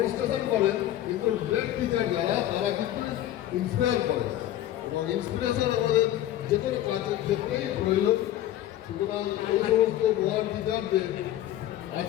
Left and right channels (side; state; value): right; quieter; 13.1 dB